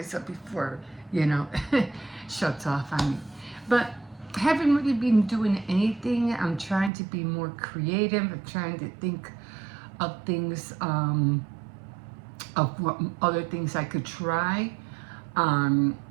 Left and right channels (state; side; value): drops out; left; at 6.9 s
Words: up before, you know, shuts off on me. But I haven't really been doing anything. I'm trying to be more creative. I'm trying to think of things, of what other things I could try.